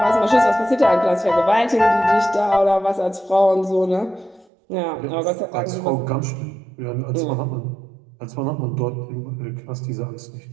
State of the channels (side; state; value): left; drops out; at 4.5 s